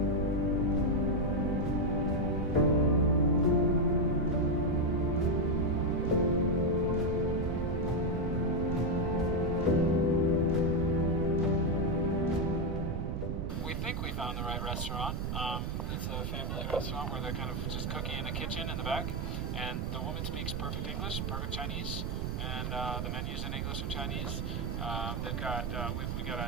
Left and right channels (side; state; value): right; noise; rumble, 1 dB below the sound